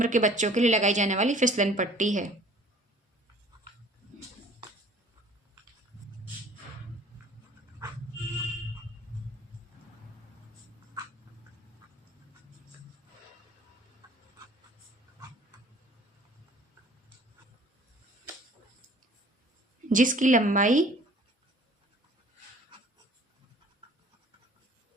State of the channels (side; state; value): both; normal; correlation 0.51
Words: के बच्चों के लिए लगाई जाने वाली फिसलन पट्टी है। जिसकी लंबाई